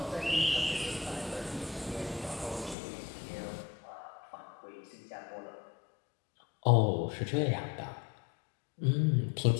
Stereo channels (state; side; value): drops out; right; at 2.8 s